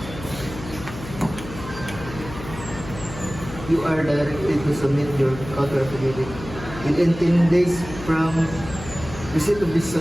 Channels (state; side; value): noise; left; hum, 12 dB below the sound